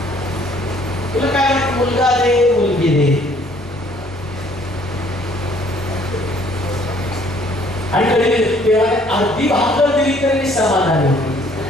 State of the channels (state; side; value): normal; both; correlation 0.60